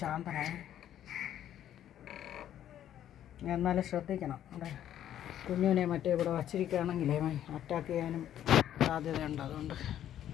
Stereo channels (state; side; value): quieter; right; 11.1 dB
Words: ശാന്തനായി. എന്നാലും ശ്രദ്ധിക്കണം. അവിടെ കുഞ്ഞിനെ മറ്റേ ഇവിടെ വച്ചിരിക്കുകയാണെങ്കിലേ അറ്റാക്ക് ചെയ്യാനും സാധ്യതയുണ്ട്. അതുകൊണ്ട്